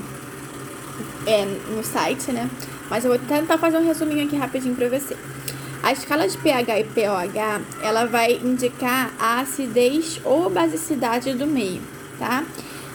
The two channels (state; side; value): identical; both; correlation 1.00